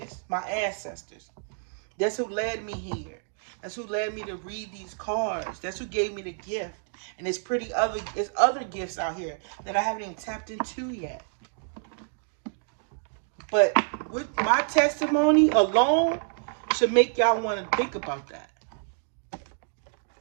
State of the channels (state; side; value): silent; left; digital silence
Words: My ancestors. That's who led me here. That's who led me to read these cards. That's who gave me the gift. And there's other gifts out here that I haven't even tapped into yet. But with my testimony alone should make y'all want to think about that.